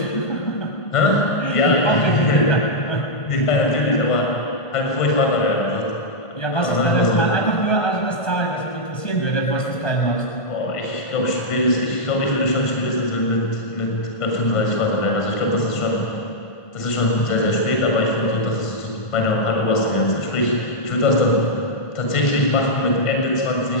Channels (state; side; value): late; right; 1.5 ms